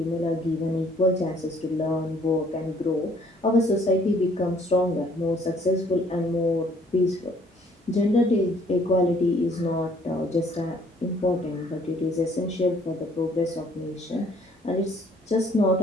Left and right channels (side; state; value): both; normal; correlation 0.61